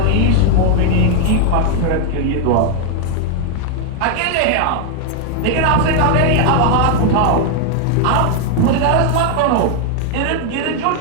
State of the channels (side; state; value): both; different; correlation 0.00